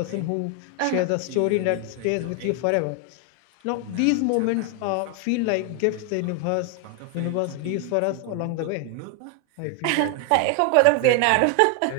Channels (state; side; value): different; both; correlation 0.01